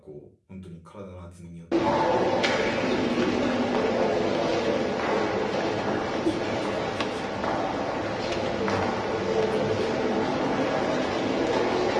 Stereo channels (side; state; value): both; identical; correlation 1.00